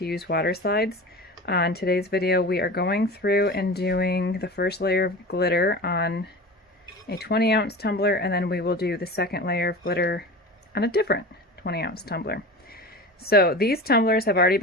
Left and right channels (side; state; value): both; normal; correlation 0.33